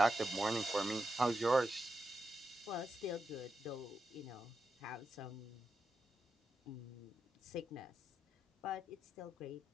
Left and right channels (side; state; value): both; normal; correlation 0.87